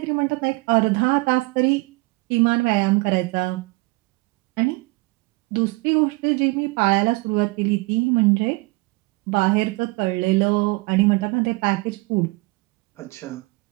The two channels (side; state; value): left; quieter; 24.8 dB